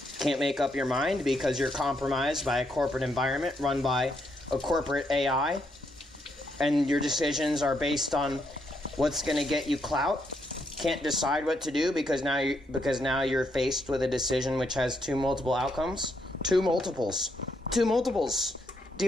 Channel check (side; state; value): both; normal; correlation 0.77